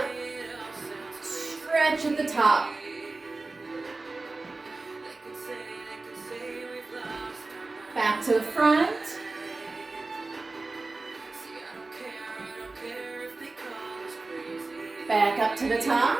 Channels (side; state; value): left; quieter; 3.4 dB